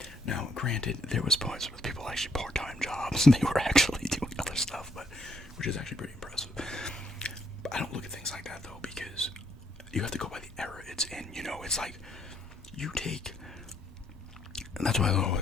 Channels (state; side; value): normal; both; correlation 0.72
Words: Now, granted, there was points where people actually part-time jobs and they were actually doing other stuff, but which is actually pretty impressive. But I don't look at things like that though, because you have to go by the era it's in. You know, it's like you take, and that's why I